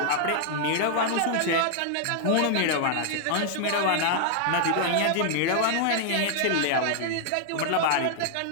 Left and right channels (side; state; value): both; different; correlation -0.01